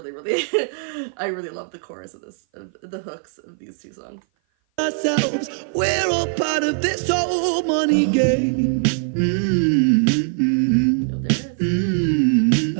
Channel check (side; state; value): left; silent; 57 dB below the other